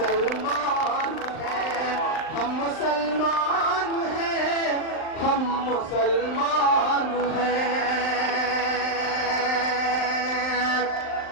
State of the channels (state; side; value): late; right; 39 ms